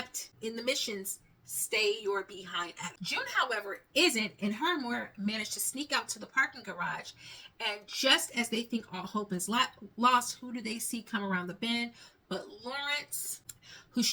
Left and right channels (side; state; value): both; identical; correlation 1.00